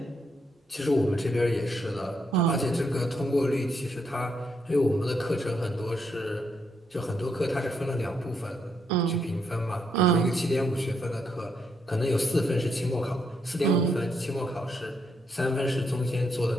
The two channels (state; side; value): normal; both; correlation 0.77